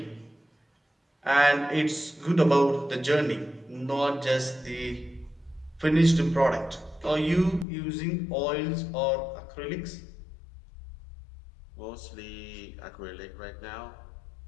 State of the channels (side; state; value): right; drops out; at 7.7 s